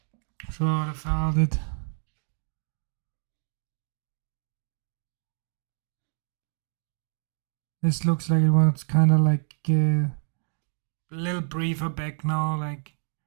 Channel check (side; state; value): left; silent; digital silence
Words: Should have held it. This looks like it was kind of like a little briefer back now. Like